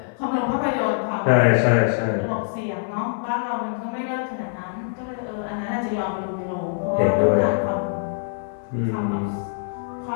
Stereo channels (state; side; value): silent; right; 57 dB below the other